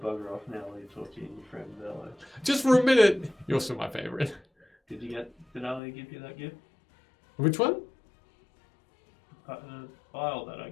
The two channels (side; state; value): right; drops out; at 5.8 s